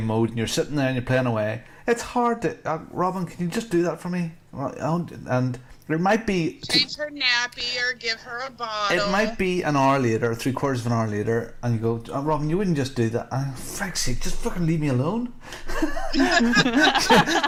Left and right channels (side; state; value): both; identical; correlation 1.00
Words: mode and you're sitting there and you're playing away. It's hard to Robin, can you just do that for me? And there might be change her nappy or give her a bottle. It might be an hour later, 3/4 of an hour later, and you go, oh, Robin, you wouldn't just do that. For fuck's sake, just fucking leave me alone.